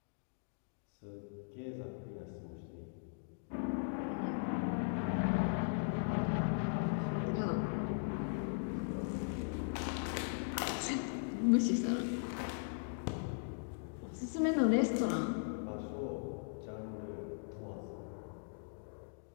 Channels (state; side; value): silent; right; digital silence